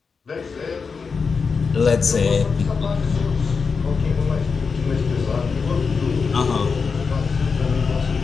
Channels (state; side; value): quieter; right; 5.2 dB